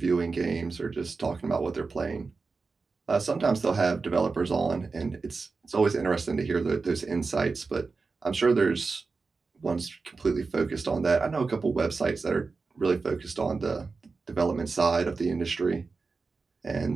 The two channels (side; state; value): left; quieter; 4.3 dB